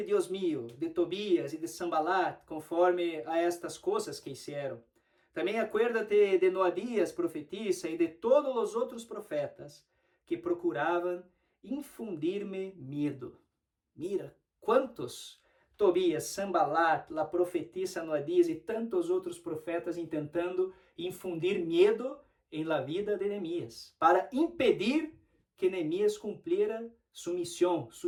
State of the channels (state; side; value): identical; both; correlation 1.00